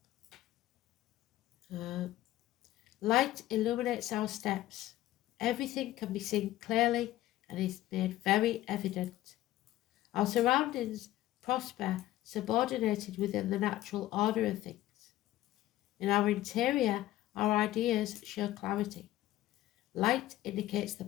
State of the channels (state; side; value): quieter; right; 15.1 dB